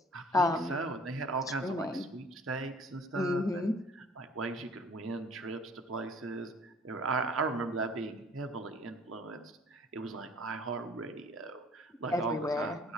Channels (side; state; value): both; normal; correlation 0.53